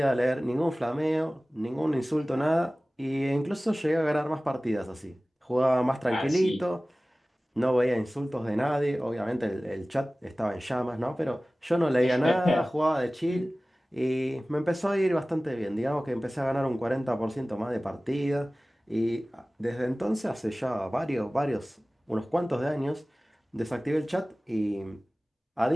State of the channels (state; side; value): normal; both; correlation 0.98